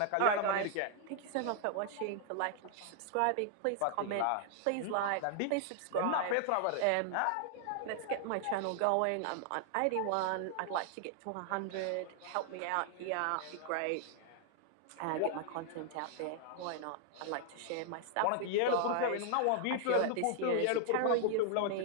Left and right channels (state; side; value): different; both; correlation 0.00